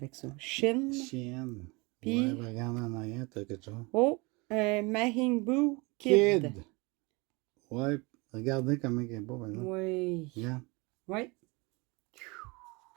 ça. Shin. Chienne. Puis- Ouais, regarde en arrière, t'as quelque chose. Oh, Majin Buu Kid. Ouais, regardez comment il est beau, par exemple. Oui. Regarde. Oui.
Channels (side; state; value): left; quieter; 26.9 dB